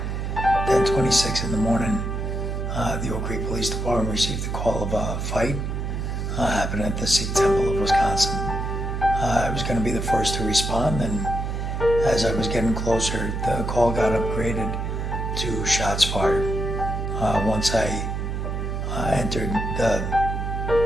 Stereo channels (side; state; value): right; noise; hum, 3 dB below the sound